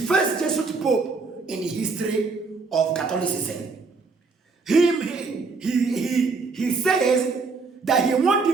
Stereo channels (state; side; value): quieter; left; 4.3 dB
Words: Jesuit Pope in the history of Catholicism? He says that he wants